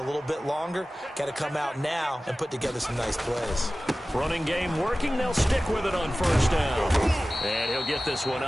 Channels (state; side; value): normal; both; correlation 0.96